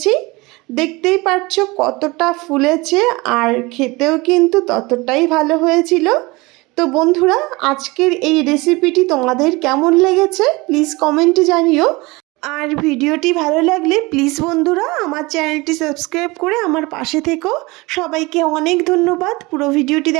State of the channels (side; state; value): left; quieter; 23.5 dB